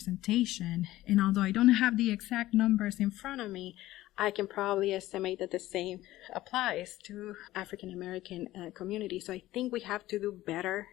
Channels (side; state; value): right; quieter; 16.0 dB